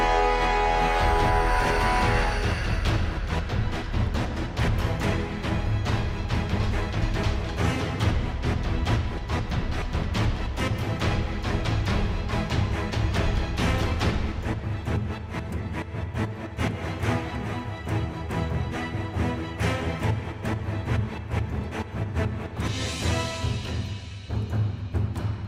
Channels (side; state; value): both; identical; correlation 1.00